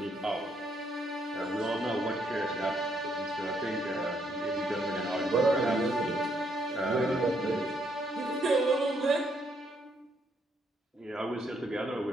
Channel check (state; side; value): normal; both; correlation 0.73